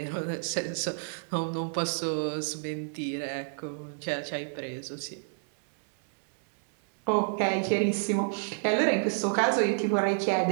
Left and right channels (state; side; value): silent; left; 58 dB below the other